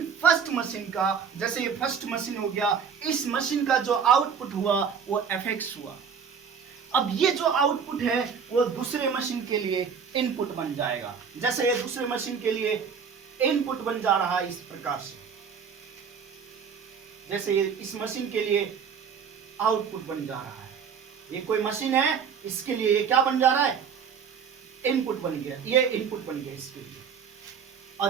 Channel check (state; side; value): quieter; left; 6.7 dB